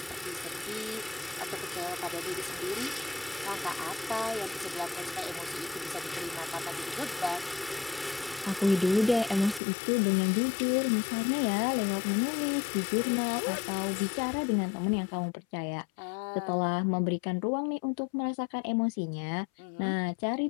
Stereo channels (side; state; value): right; drops out; at 9.6 s